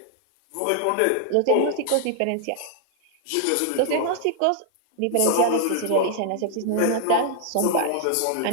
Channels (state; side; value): different; both; correlation 0.00